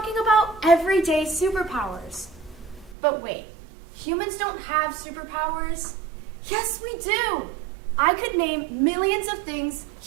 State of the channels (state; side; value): drops out; left; at 3.0 s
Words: about everyday superpowers. But wait, humans don't have superpowers? Yes, we do! I could name millions of things